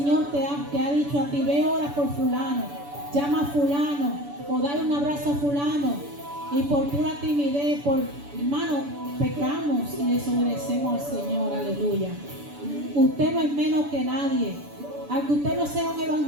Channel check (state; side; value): late; left; 7.0 ms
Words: te ha dicho a ti, ve, ora por fulano, llama a fulano, o dale un abrazo a fulano, y por pura timidez, hermano, pecamos y desobedecemos al Señor, aleluya. Usted no es menos que nadie. Aunque usted no sea un